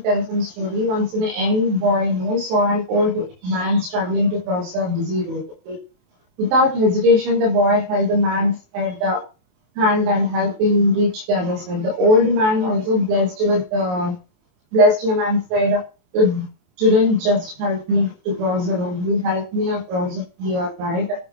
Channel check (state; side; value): late; left; 28 ms